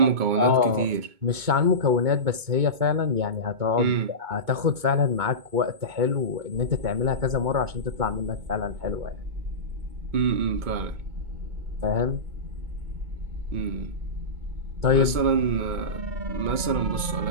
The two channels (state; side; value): late; left; 2.2 ms